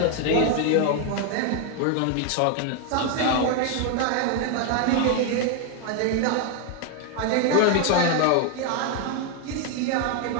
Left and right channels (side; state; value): both; different; correlation 0.01